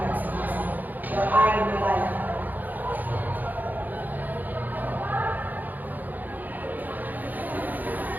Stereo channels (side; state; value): left; late; 0.084 ms